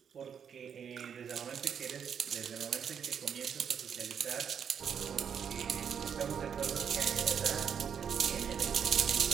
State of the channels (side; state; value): left; quieter; 7.6 dB